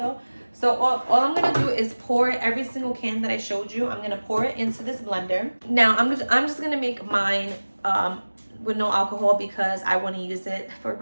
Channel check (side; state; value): both; inverted; correlation -1.00